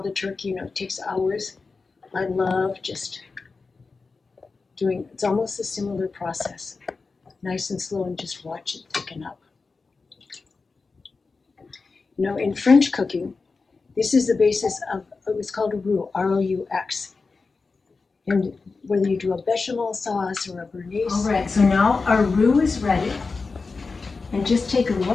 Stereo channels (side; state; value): right; quieter; 4.3 dB